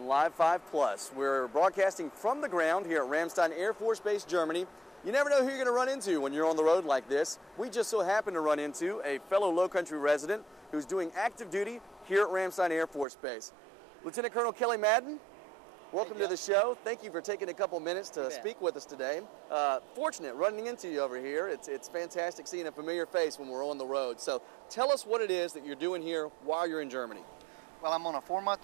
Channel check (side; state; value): left; drops out; at 13.1 s